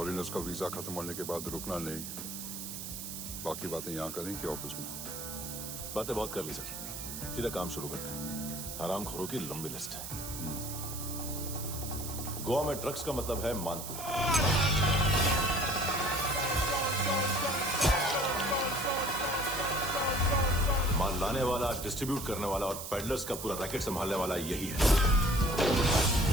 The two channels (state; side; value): noise; right; hiss, 8 dB below the sound